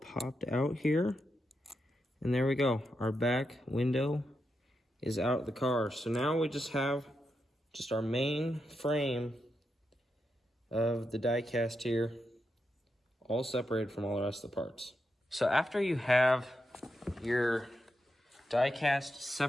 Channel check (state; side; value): normal; both; correlation 0.85